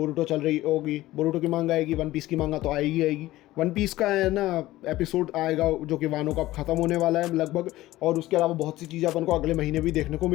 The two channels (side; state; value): right; quieter; 16.6 dB